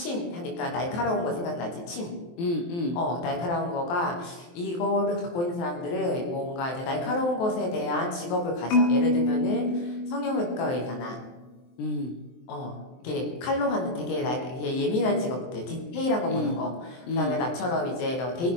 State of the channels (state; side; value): late; right; 23 ms